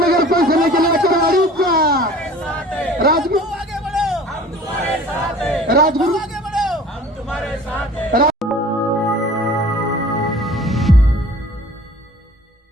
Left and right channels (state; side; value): normal; both; correlation 0.46